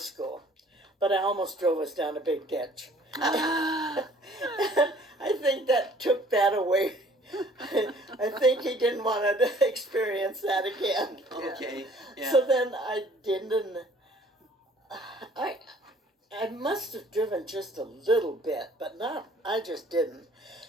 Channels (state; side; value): normal; both; correlation 0.55